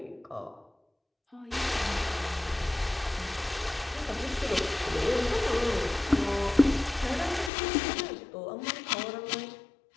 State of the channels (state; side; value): drops out; right; at 7.5 s